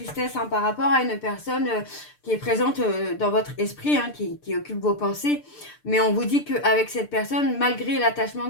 par rapport à une personne qui est présente dans votre esprit, qui occupe vos pensées. Mais on vous dit qu'avec cette personne, malgré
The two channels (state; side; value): late; right; 6.7 ms